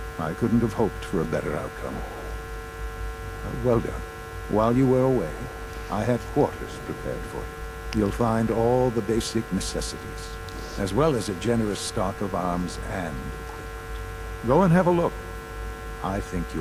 I couldn't have hoped for a better outcome. Well done. While you were away, I had quarters prepared for you. You'll find all the basic necessities, as well as a generous stock of arms and equipment. Go and have a look. I think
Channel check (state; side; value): identical; both; correlation 1.00